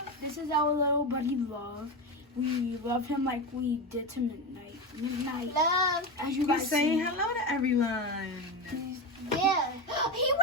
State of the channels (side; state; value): both; normal; correlation 0.17